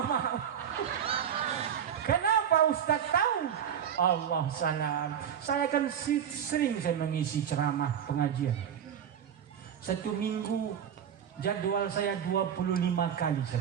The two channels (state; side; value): quieter; left; 8.7 dB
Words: Kenapa Ustaz tahu? Allah salam. Saya kan sering saya mengisi ceramah pengajian. 1 minggu jadwal saya 25 kali